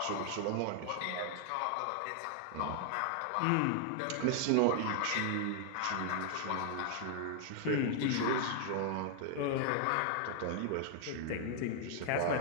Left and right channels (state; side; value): different; both; correlation 0.00